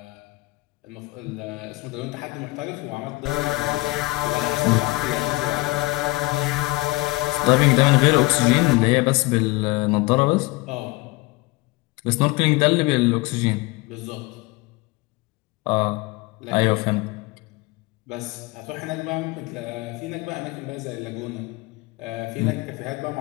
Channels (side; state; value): right; quieter; 22.1 dB